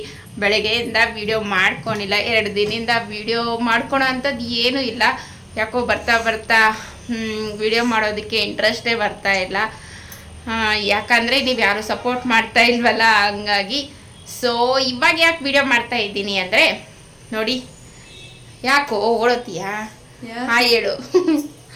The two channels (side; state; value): both; identical; correlation 1.00